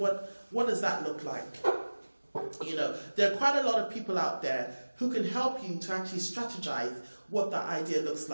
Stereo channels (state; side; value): inverted; both; correlation -1.00